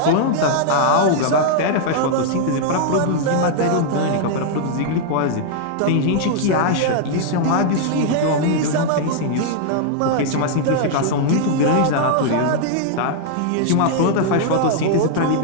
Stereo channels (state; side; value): different; both; correlation -0.01